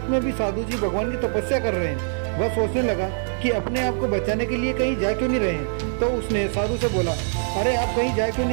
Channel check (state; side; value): silent; left; 63 dB below the other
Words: में भी साधु जी भगवान की तपस्या कर रहे हैं। वह सोचने लगा कि अपने आप को बचाने के लिए कहीं जा क्यों नहीं रहे हैं। तो उसने साधु से बोला, अरे आप कहीं जा क्यों